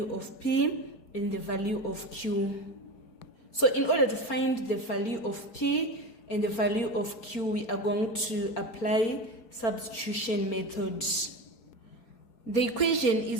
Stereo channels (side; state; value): right; late; 4.7 ms